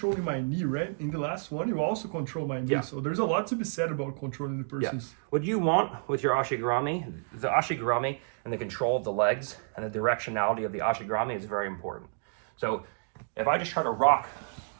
my knee, right? In the last one, you also control my knee. Yeah. So there's a lot to be said about controlling the person's. Yeah. What you want with your ashigarami, the ashigarami and the control of the legs and the directionality of the ashigarami is very important. So if I just try to rock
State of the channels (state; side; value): silent; left; digital silence